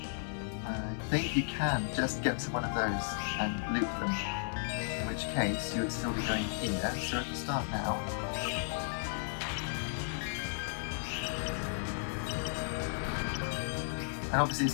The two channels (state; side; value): silent; right; digital silence